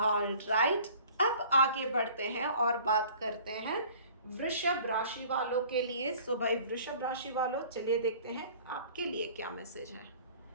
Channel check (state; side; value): inverted; both; correlation -0.49